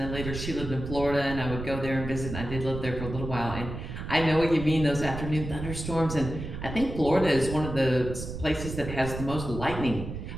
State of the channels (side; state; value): right; noise; rumble, 8 dB below the sound